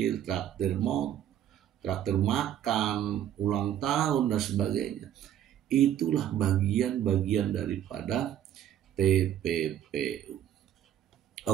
traktir makan, ulang tahun, dan sebagainya. Itulah bagian-bagian daripada TPPU.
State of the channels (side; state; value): left; quieter; 10.8 dB